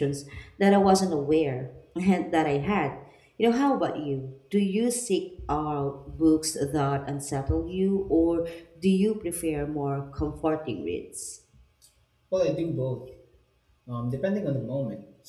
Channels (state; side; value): identical; both; correlation 1.00